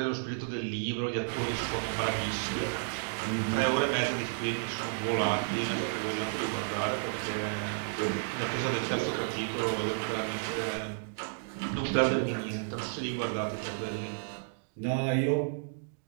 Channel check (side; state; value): left; silent; digital silence